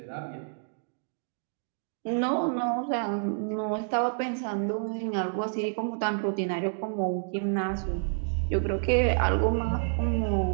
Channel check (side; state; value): left; silent; digital silence